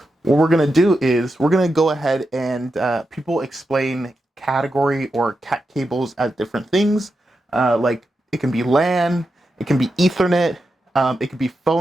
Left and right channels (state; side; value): normal; both; correlation 0.88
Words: what we're going to do is we're going to go ahead and people explain category or cat cables as different things. Like it can be LAN, it can be Ethernet, it could be